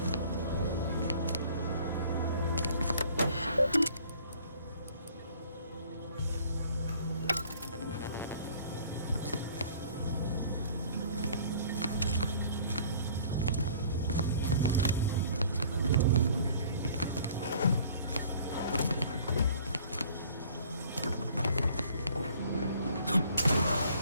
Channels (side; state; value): both; inverted; correlation -0.53